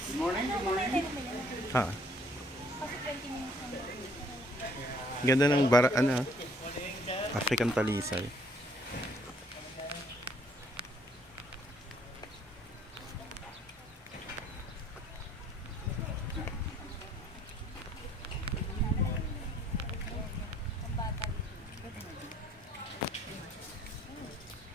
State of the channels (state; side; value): normal; both; correlation 0.61